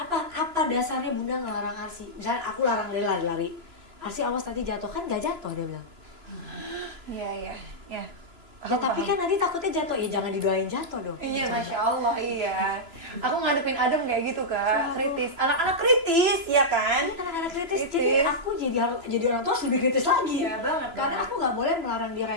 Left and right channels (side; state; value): left; late; 3.0 ms